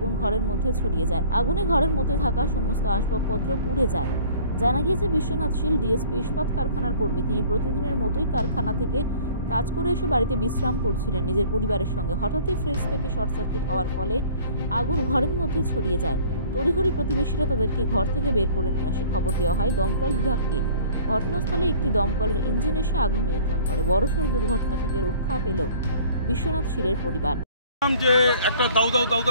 ঘরের মধ্যে ছড়িয়ে যায়। আগুনে ঘরের মধ্যে থাকা সমস্ত আসবাবপত্র পুড়ে যায়। জানা গিয়েছে, বিশ্বনাথ শীল ডিএসপি ইস্পাত কারখানার কর্মী। তিনি প্রতিদিনের মতোই কারখানা থেকে কাজ করে এসে বাড়িতে বিশ্রাম করছিলেন নিজের পরিবারের সঙ্গে। হঠাৎই ফ্রিজ থেকে শর্ট সার্কিট হওয়ার ফলে আগুন ঘরের মধ্যে ছড়িয়ে যায়। তড়িঘড়ি প্রতিবেশীরা তাদেরকে ঘর থেকে বের করে নিয়ে আসে। খবর দেওয়া হয় দমকল বিভাগকে। ঘটনাস্থলে একটি দমকলের ইঞ্জিন এসে আগুন নিয়ন্ত্রণ করে। বড়সড় দুর্ঘটনা থেকে রক্ষা পেল বিশ্বনাথ শীলের পরিবার। যে একটা দাউ দাউ দাউ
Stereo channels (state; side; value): inverted; both; correlation -0.50